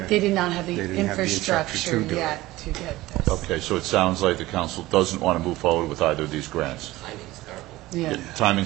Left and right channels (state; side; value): quieter; left; 17.9 dB